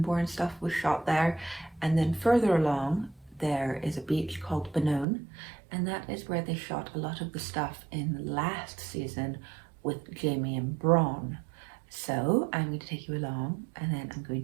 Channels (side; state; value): left; drops out; at 5.1 s